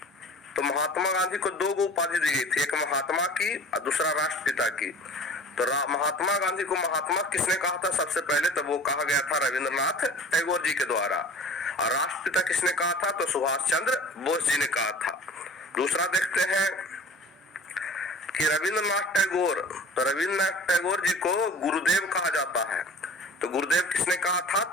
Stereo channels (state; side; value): normal; both; correlation 0.42